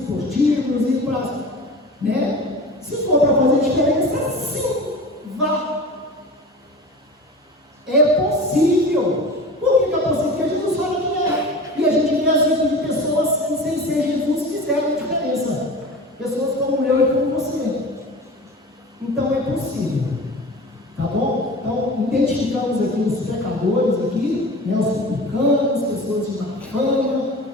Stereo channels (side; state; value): both; normal; correlation 0.35